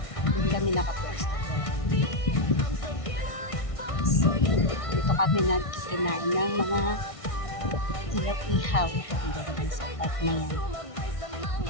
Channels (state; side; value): late; right; 1.6 ms